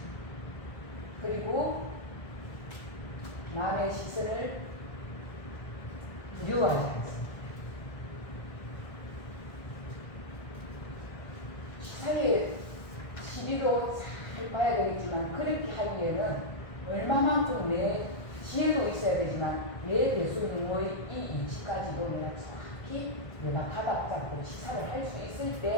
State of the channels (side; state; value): right; late; 1.5 ms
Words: 그리고 남의 시선을 두려워하지 않습니다. 시사의 시비도 잘 봐야 되겠지만 그렇게 하기에는 얼마만큼 내 지혜도 있어야 되지만 내 대수님의 이 이치까지도 내가 정확히 내가 가닥 잡고 치사를 할 수 있을